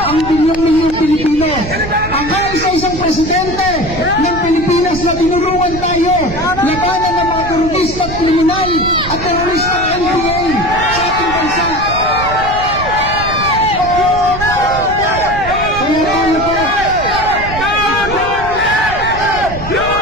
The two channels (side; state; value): right; noise; rumble, 10 dB below the sound